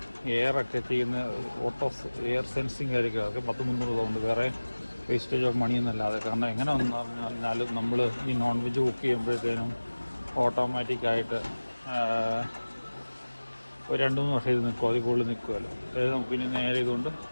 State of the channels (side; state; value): both; inverted; correlation -1.00